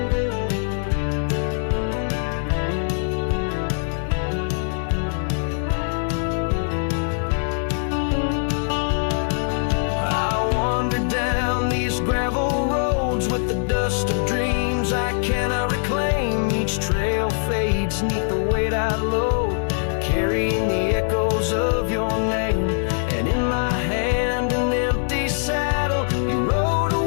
Gravel roads with the dust of dreams I cannot reclaim. Each trail fades neath the weight I load, carrying the echoes of your name. And in my hand an empty saddle, you rode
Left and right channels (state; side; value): silent; right; digital silence